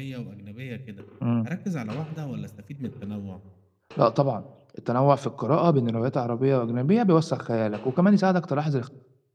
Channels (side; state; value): both; identical; correlation 1.00